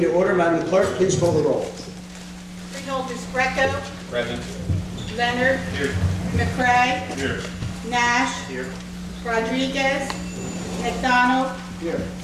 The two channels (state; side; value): identical; both; correlation 1.00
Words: to order. Madam Clerk, please call the roll. Freeholders Greco. Present. Leonard. Here. McCray. Here. Nash. Here. Rodriguez. McDonald. Here.